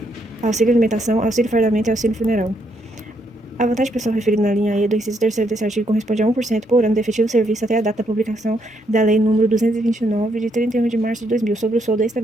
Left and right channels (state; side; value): normal; both; correlation 0.75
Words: Auxílio alimentação, auxílio fardamento e auxílio funeral. A vantagem pessoal referida na linha E do inciso 3º desse artigo corresponde a 1% por ano de efetivo serviço até a data da publicação da Lei nº 229, de 31 de março de 2000, sobre o soldo